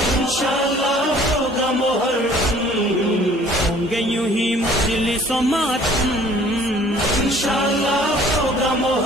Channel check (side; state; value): both; normal; correlation 0.54